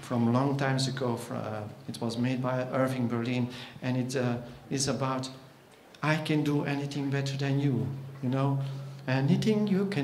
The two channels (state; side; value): identical; both; correlation 1.00